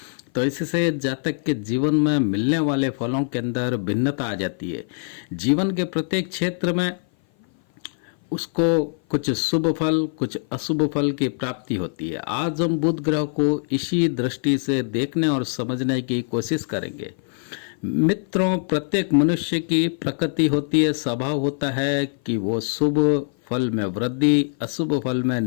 तो इससे जातक के जीवन में मिलने वाले फलों के अंदर भिन्नता आ जाती है। जीवन के प्रत्येक क्षेत्र में उसको कुछ शुभ फल कुछ अशुभ फल की प्राप्ति होती है। आज हम बुध ग्रह को इसी दृष्टि से देखने और समझने की कोशिश करेंगे। मित्रों, प्रत्येक मनुष्य की प्रकृति होती है, स्वभाव होता है कि वो शुभ फल में वृद्धि अशुभ फल में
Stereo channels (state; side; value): silent; right; 57 dB below the other